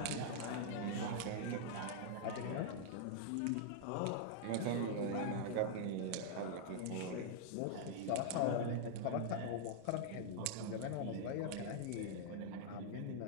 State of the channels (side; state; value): both; different; correlation -0.01